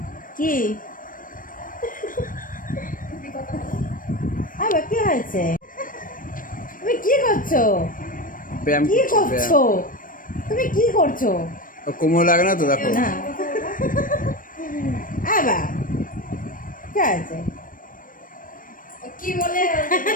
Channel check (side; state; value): right; late; 0.40 ms